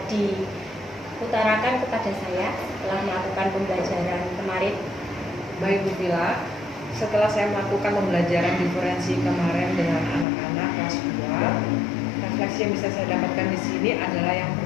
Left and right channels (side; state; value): right; drops out; at 10.2 s